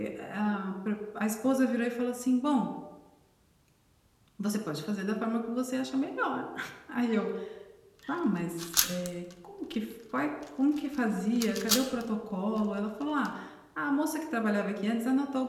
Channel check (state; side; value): identical; both; correlation 1.00